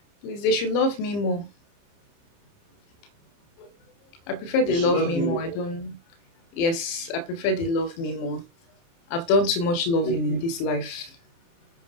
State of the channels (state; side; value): late; right; 30 ms